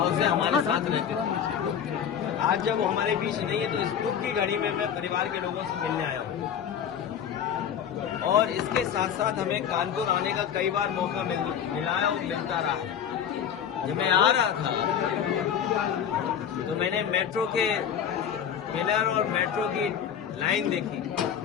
से हमारे साथ रहते थे। आज जब हमारे बीच नहीं है तो इस दुख की घड़ी में मैं परिवार के लोगों से मिलने आया हूँ। और इसके साथ साथ हमें कानपुर आने का कई बार मौका मिला है और मिलता रहा। जब मैं आ रहा था तो मैंने मेट्रो के पिलर और मेट्रो की लाइन देखी।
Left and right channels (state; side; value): quieter; right; 8.5 dB